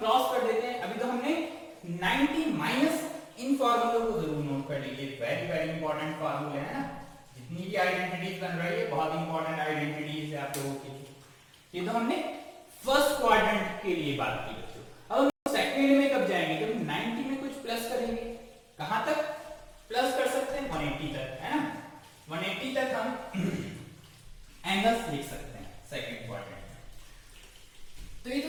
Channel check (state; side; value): identical; both; correlation 1.00